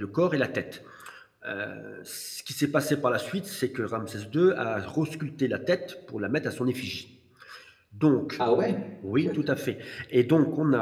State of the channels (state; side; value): identical; both; correlation 1.00